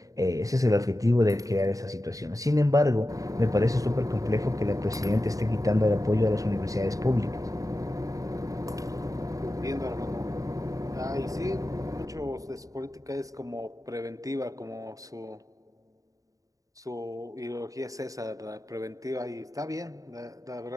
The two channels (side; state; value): left; late; 0.16 ms